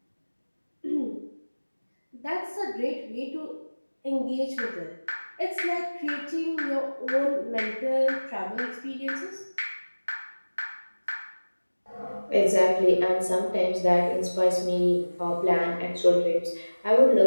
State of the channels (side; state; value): both; inverted; correlation -1.00